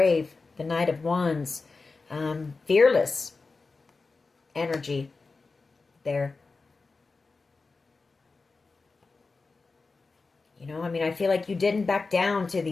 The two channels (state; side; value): quieter; right; 4.0 dB